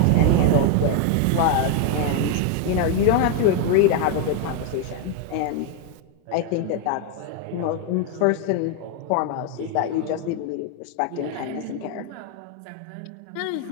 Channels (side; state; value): both; different; correlation 0.01